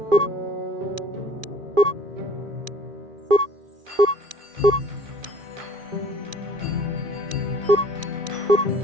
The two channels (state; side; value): late; left; 2.4 ms